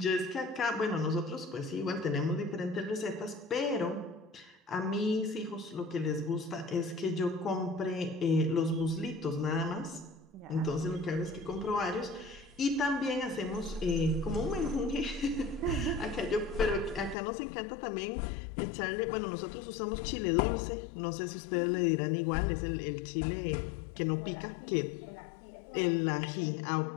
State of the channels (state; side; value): drops out; right; at 17.2 s